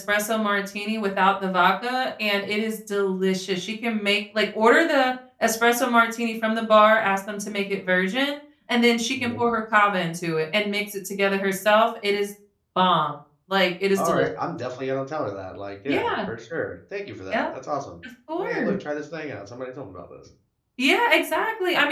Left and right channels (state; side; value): identical; both; correlation 1.00